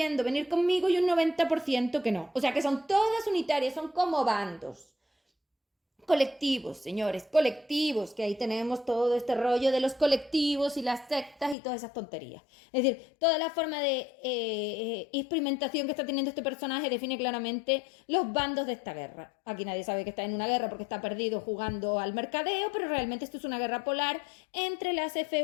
venir conmigo y un 90% que no. O sea que son todas unitarias, son como bandos. Colectivos, señores, colectivos, que ahí tenemos todo este rollo de los colectivos y las sectas y todas esas tonterías. Es decir, toda la forma de experimentación que está teniendo este personaje define claramente los bandos de esta guerra. Aquí nadie sabe que está en una guerra porque está perdido jugando al mercadeo, pero realmente esto es una guerra polar entre las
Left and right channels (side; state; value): right; drops out; at 11.6 s